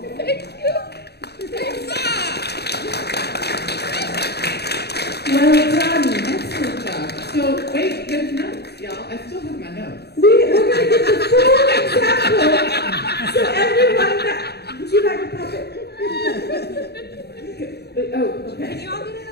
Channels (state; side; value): late; right; 0.48 ms